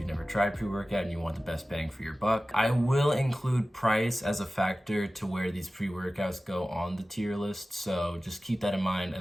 never tried pre-workout and you want the best bang for your buck. I will include price as a factor to where these pre-workouts go on the tier list, so just keep that in mind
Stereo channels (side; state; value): both; normal; correlation 0.96